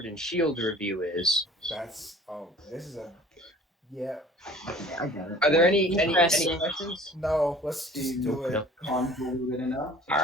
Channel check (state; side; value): normal; both; correlation 0.49